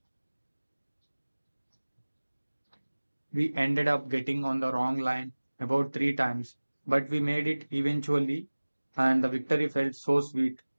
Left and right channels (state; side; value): inverted; both; correlation -1.00